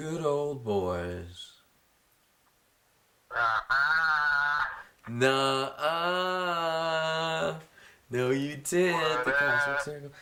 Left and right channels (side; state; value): both; identical; correlation 1.00